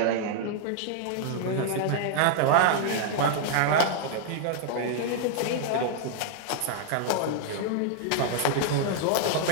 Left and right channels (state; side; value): different; both; correlation -0.01